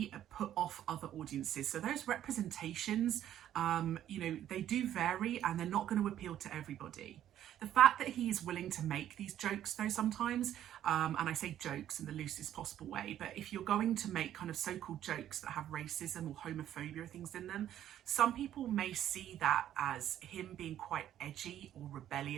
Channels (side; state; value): left; quieter; 11.4 dB